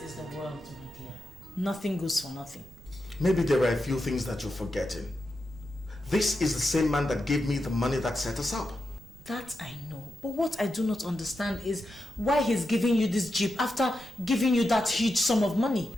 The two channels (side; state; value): right; noise; rumble, 21 dB below the sound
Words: is the world, my dear. Nothing goes for nothing. Maybe there are a few things that you're forgetting. This is the same man that gave me the money that set us up. That I know. But what I do not understand is why he's giving you this Jeep after giving you that huge sum of money.